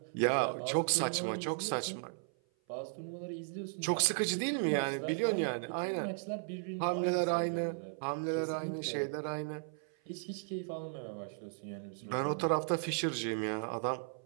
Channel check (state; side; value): silent; left; 54 dB below the other